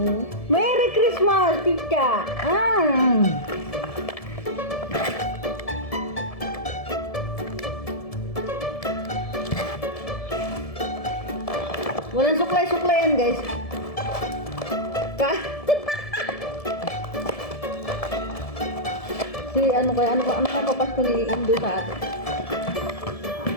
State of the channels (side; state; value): right; late; 1.7 ms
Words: Merry Christmas, Pika! Walang suklay-suklay yan, guys. Si ano papasko ni Indo sa atin?